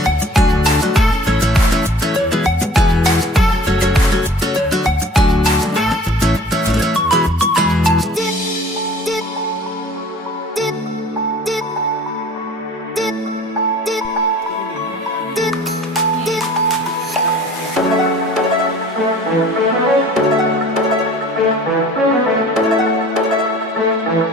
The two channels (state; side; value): normal; both; correlation 0.48